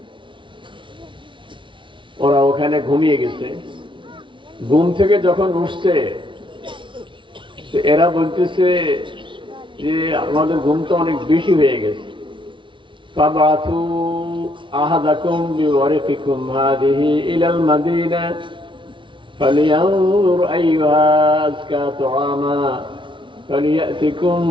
ওরা ওখানে ঘুমিয়ে গেছে। ঘুম থেকে যখন উঠছে এরা বলতেছে যে আমাদের ঘুম তো অনেক বেশি হয়ে গেছে। ফাবাথু আহাদাকুম বিওয়ারিকিকুম হাদিহি ইলাল মাদিনা فلينظر أيها أزكى طعاما فليأتكم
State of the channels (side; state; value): left; late; 0.24 ms